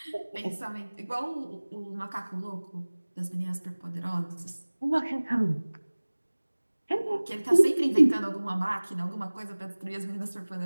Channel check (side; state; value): both; inverted; correlation -1.00